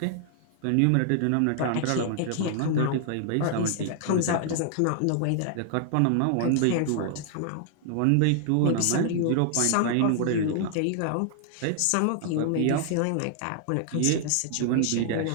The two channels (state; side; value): different; both; correlation -0.01